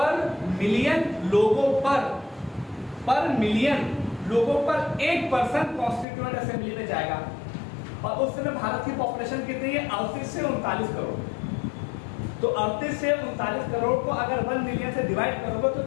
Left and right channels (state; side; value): drops out; right; at 6.1 s